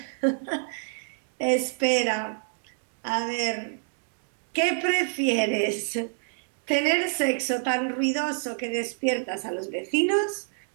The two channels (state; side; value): silent; left; digital silence